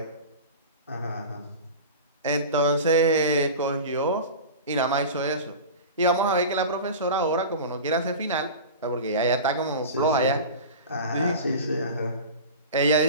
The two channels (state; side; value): inverted; both; correlation -0.31